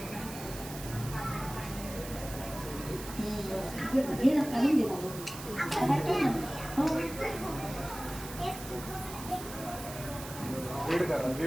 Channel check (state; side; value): noise; right; hiss, 12 dB below the sound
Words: हे ना काढून दे बाबा. रीड करा,